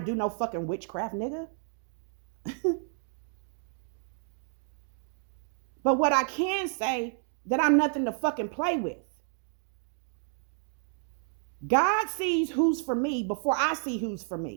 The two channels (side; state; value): left; silent; 57 dB below the other